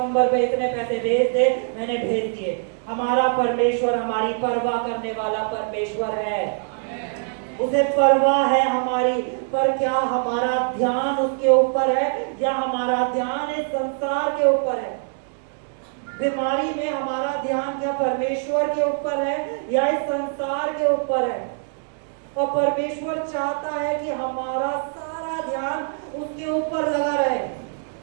पे इतने पैसे भेज दे, मैंने भेज दिए। हमारा परमेश्वर हमारी परवाह करने वाला परमेश्वर है, उसे परवाह है हमारी। पर क्या हमारा ध्यान उसके ऊपर है या हमारा ध्यान इस संसार के ऊपर है? बीमारी में हमारा ध्यान क्या परमेश्वर के ऊपर है या इस संसार के ऊपर है? और परमेश्वर चाहता है कि हमारा सारा ध्यान उसके ऊपर लगा रहे।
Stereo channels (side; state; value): left; silent; 63 dB below the other